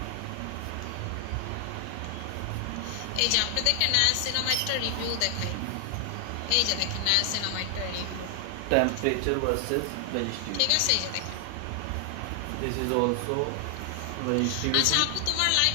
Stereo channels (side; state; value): both; different; correlation 0.00